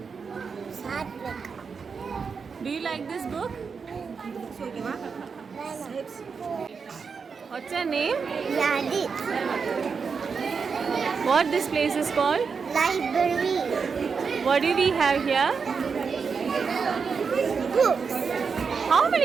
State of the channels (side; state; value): left; quieter; 5.6 dB